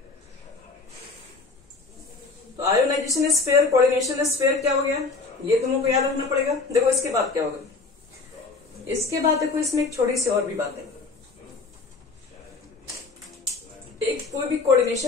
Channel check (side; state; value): right; quieter; 4.0 dB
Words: तो आयोनाइजेशन स्फीयर, कोऑर्डिनेशन स्फीयर क्या हो गया, ये तुमको याद रखना पड़ेगा। देखो इसके बाद क्या होगा, इसके बाद देखो इसमें एक छोटी सी और भी बात है। एक कोई भी